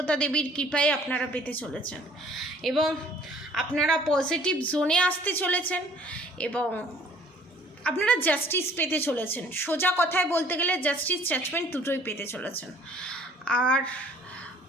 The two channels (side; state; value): both; normal; correlation 0.56